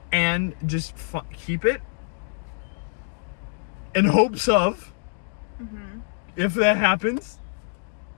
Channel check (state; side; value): silent; right; digital silence